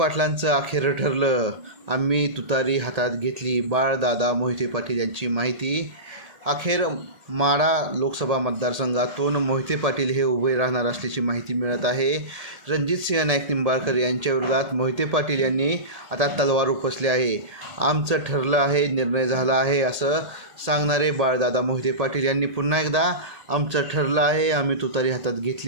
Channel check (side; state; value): left; late; 1.8 ms